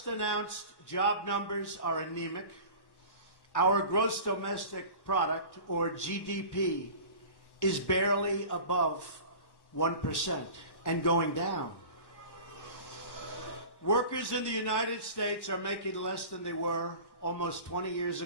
announced job numbers are anemic. Our gross domestic product, or GDP, is barely above 1% and going down. Workers in the United States are making less than they were almost 20 years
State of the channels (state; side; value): late; right; 1.1 ms